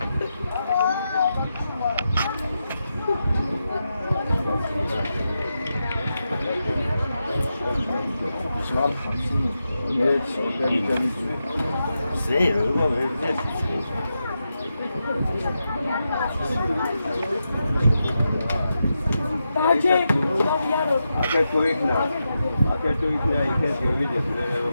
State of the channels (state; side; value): inverted; both; correlation -0.88